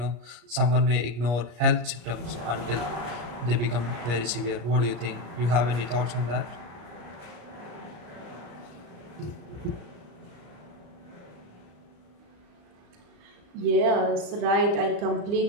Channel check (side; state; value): left; late; 34 ms